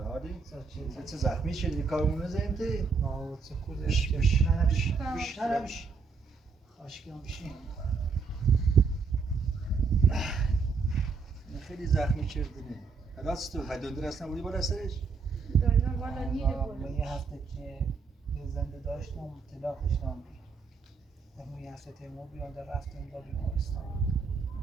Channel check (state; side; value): quieter; left; 5.0 dB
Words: چه زخمی شدی کارمون نزدیم تی؟ نه چه خوده بش خاشکی هم بشین خیلی زخمی کردنی راست تو دندون اصلا بودی بالا سرش؟ دندون بالا نیره من یه هفته که یه زنده داشتم طلاق داشتم در یه هفته تیمور بیانده رفتم با بیمارستان